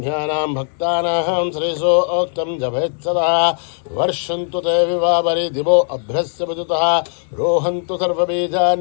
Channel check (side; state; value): right; silent; digital silence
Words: भक्तानां श्रीसोक्तं जपेत्सदा वर्षन्तु ते विवावरि दिवो अभ्रस्य विदुतः रोहन्तु